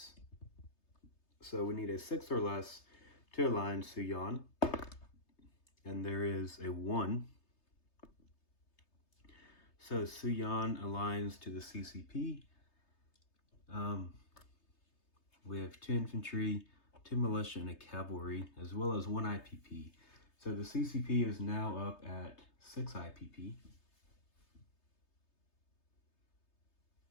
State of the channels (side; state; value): right; late; 3.3 ms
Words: So we need a 6 or less to align Suyan. And there is a 1. So Suyan aligns to the CCP. We have 2 infantry, 2 militia, and a cavalry, as well as 1 IPP. So the CCP is now up at 6 IPP.